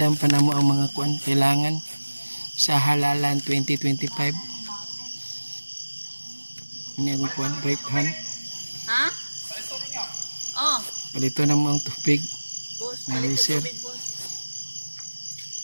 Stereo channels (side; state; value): both; inverted; correlation -1.00